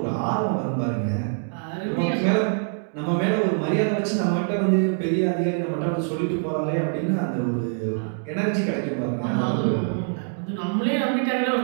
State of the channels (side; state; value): left; silent; digital silence